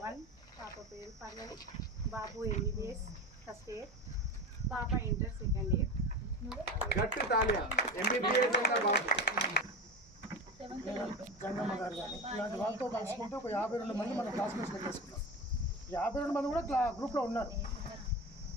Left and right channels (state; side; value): normal; both; correlation 0.26